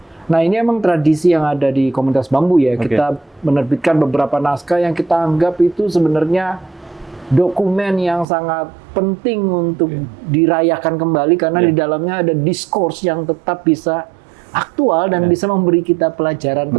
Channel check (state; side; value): drops out; left; at 8.2 s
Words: Nah, ini emang tradisi yang ada di Komunitas Bambu ya. Kita menerbitkan beberapa naskah yang kita anggap itu sebenarnya dokumen yang sangat penting untuk dirayakan kembali karena di dalamnya ada diskurs yang tetap bisa aktual dan bisa memberi kita pelajaran